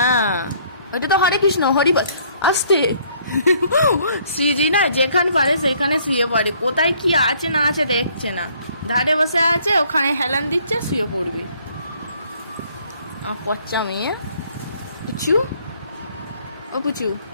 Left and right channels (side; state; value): both; inverted; correlation -0.62